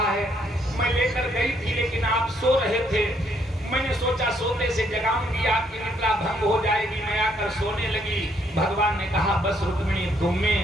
है, मैं लेकर गई थी लेकिन आप सो रहे थे, मैंने सोचा सोते से जगाऊंगी आपकी निद्रा भंग हो जाएगी, मैं आकर सोने लगी। भगवान ने कहा बस रुक्मिणी तुम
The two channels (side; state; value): both; normal; correlation 0.70